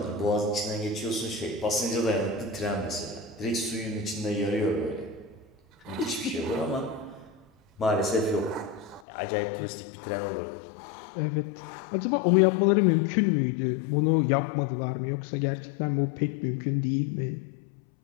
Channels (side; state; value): right; drops out; at 9.0 s